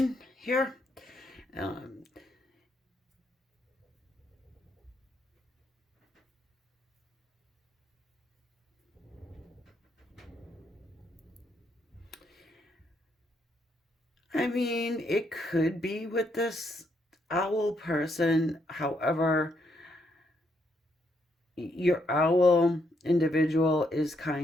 here. Um, I mean, it could be with this owl person. However, your owl individual is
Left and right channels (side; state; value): both; normal; correlation 0.75